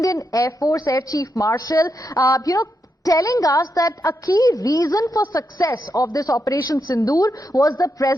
Air Force Air Chief Marshal, telling us that a key reason for success of this Operation Sindoor was the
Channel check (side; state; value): both; normal; correlation 0.84